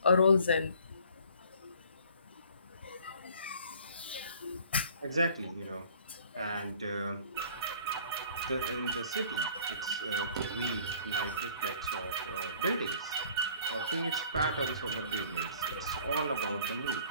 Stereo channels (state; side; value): inverted; both; correlation -0.53